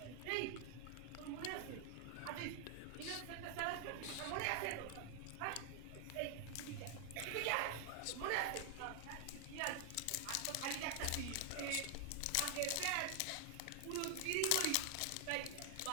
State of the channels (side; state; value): both; different; correlation 0.00